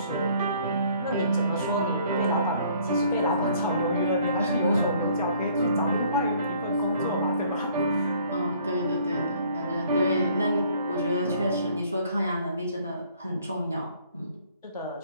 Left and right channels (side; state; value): both; inverted; correlation -0.59